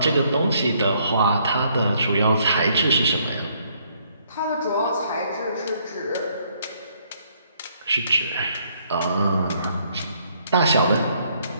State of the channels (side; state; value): both; inverted; correlation -0.68